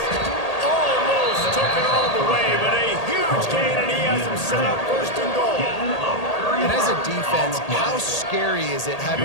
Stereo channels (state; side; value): late; right; 1.8 ms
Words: Almost took it all the way, but a huge gain, and he has him set up 1st and goal. And as a defense, how scary is it